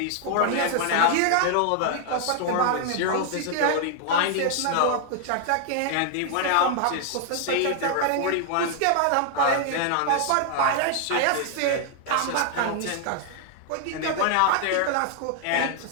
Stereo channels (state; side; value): different; both; correlation 0.00